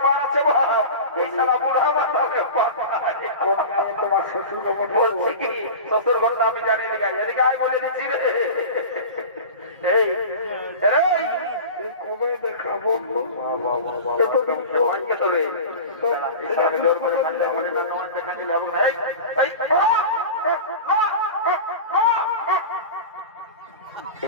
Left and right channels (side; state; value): both; inverted; correlation -0.32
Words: পার আছে ভাব, এই সারা বুড়া মাতালে তোমার শ্বশুর বলছি কি শ্বশুর ঘরটা আমি জানি এদিকে আয় বলে দিচ্ছি রে। এই কবে দেখাবো জোর করে দেখা দিলে